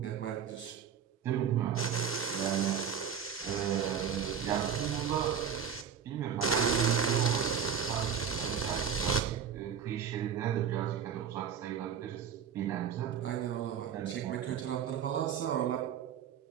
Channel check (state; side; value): quieter; left; 7.8 dB